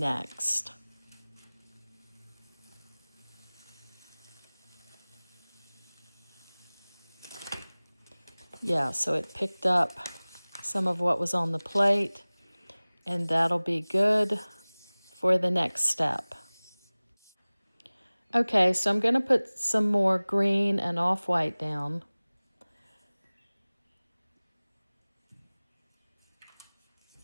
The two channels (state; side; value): inverted; both; correlation -1.00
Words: Yeah, so it picked up some of what was on the plate, and that'll be good for the next step. Okay, so I'm going to put some more green and off-white down.